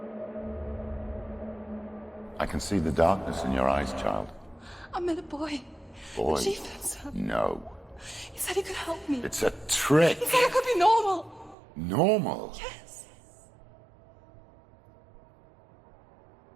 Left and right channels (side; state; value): left; drops out; at 11.6 s